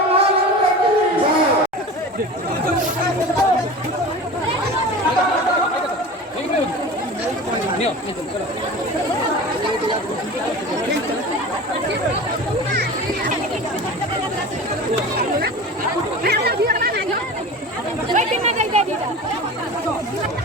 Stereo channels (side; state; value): both; normal; correlation 0.34